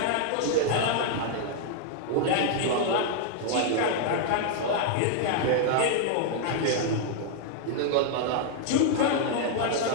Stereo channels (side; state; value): both; different; correlation 0.00